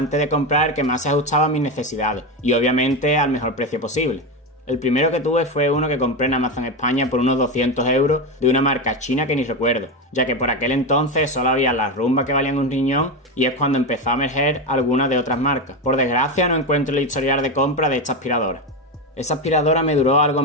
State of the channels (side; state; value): both; normal; correlation 0.15